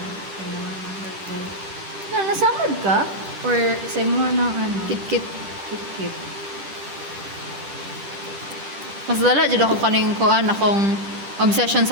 Nasamad ka? Or sa mo ng ano? Kit-kit. Kit-kit. Mas dala jud ako kaning kuan akong obsession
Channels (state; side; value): late; left; 10 ms